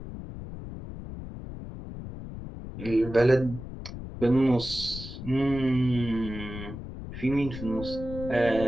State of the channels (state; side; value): noise; left; rumble, 10 dB below the sound